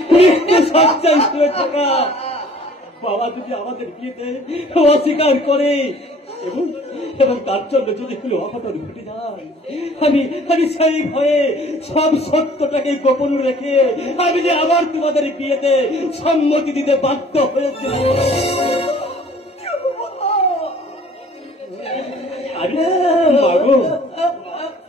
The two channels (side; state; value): both; normal; correlation 0.53